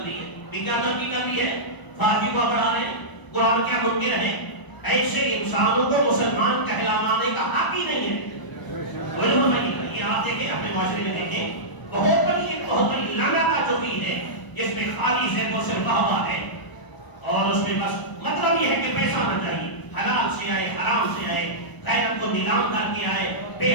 لی ہے۔ بھی کیا ترقی کر لی ہے؟ فحاشی کو بڑھا رہے ہیں، قرآن کیا منکر ہے؟ ایسے انسانوں کو مسلمان کہلانے کا حق ہی نہیں ہے۔ یہ آپ دیکھیں اپنے معاشرے میں دیکھیں، بہت بڑی لعنت جو بھی ہے، جس میں خالی سے تو صرف واہ ہے، اور اس میں بس مطلب یہ ہے کہ پیسہ آنا چاہیے، حلال سے آئے، حرام سے آئے، غیرت کو نیلام کر کے آئے، بے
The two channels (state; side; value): late; right; 1.0 ms